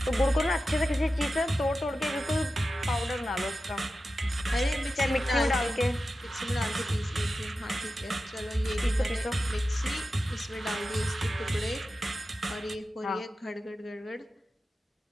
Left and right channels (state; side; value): normal; both; correlation 0.92